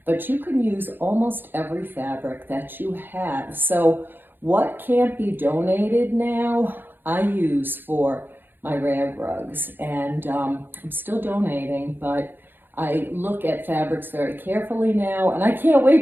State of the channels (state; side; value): late; left; 0.096 ms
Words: But you can use almost every fabric that you have. So what can't be donated now, I use for my rag rugs, and I'm still donating, but I look at fabrics very carefully now, and I can't